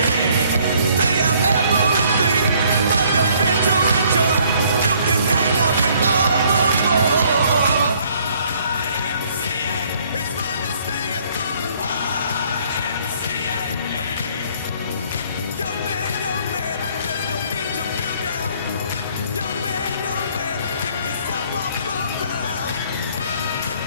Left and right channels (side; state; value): both; inverted; correlation -0.62